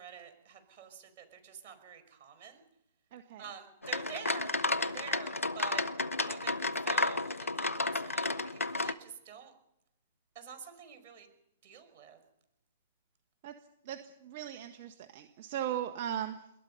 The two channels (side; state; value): both; inverted; correlation -0.35